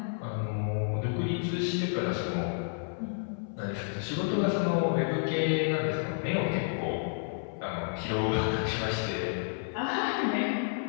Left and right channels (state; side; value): silent; right; 57 dB below the other